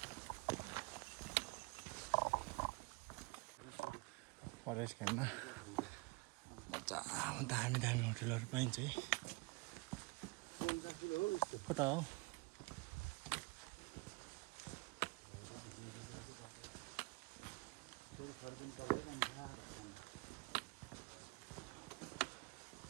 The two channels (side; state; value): left; quieter; 27.3 dB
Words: फरेस्ट क्याम्पमा मजा दामी दामी होटलहरू पाइन्छ है। कता हो